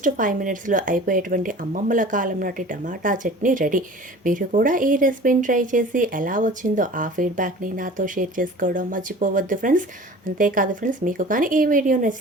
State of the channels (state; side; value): normal; both; correlation 0.43